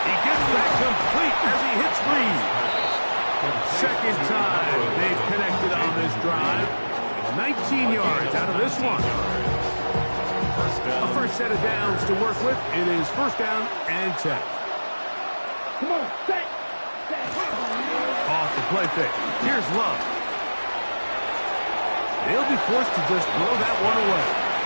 He gets that complete as he hits Reed. 2nd time they've connected on this drive. 19 yards out of this one. A 1st set of downs to work with. It is 1st down and 10. Come on, set. Off the play fake. Here's Love. They'll be forced to just throw that one away.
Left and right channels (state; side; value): inverted; both; correlation -1.00